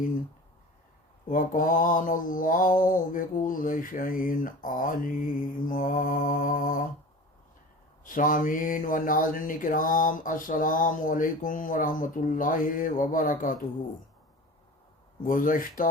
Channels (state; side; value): normal; both; correlation 0.37